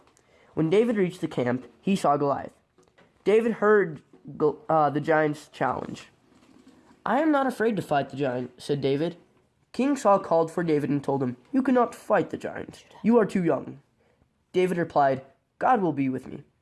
When David reached the camp, he saw Goliath. David heard the giant's challenge. "I am not afraid to fight the giant," said David. King Saul called for David and told him, "You cannot fight the giant. You are too young." David replied, "God will be with me."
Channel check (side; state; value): both; identical; correlation 1.00